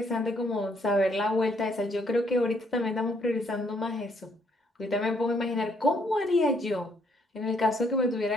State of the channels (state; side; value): normal; both; correlation 0.69